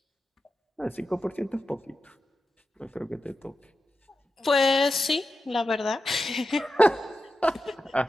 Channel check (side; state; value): both; normal; correlation 0.91